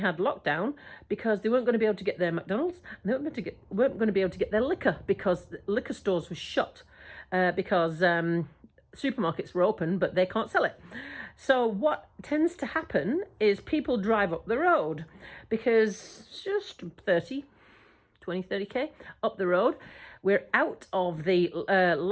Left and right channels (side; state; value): both; identical; correlation 1.00